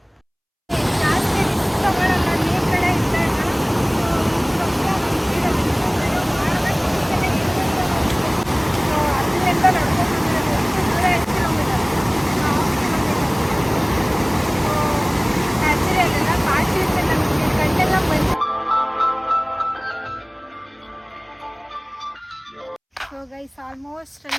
ಸೊ ಗೈಸ್ ಆಲ್ಮೋಸ್ಟ್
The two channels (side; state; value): both; identical; correlation 1.00